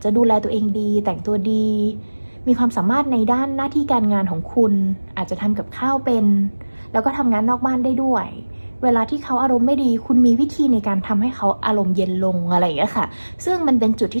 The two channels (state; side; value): inverted; both; correlation -1.00